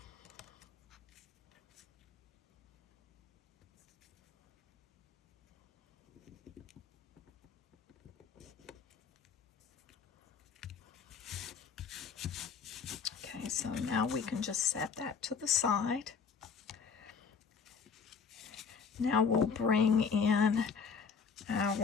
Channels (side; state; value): right; quieter; 5.9 dB